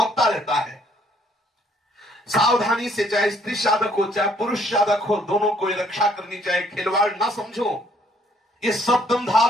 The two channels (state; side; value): normal; both; correlation 0.64